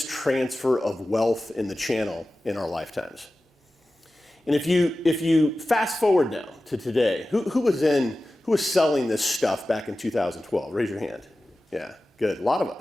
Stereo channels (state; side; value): normal; both; correlation 0.95